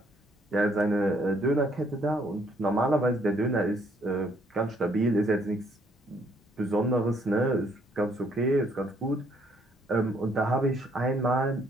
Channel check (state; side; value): normal; both; correlation 0.67